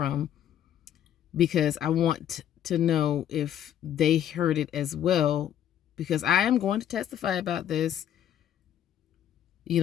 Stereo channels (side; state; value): right; quieter; 10.5 dB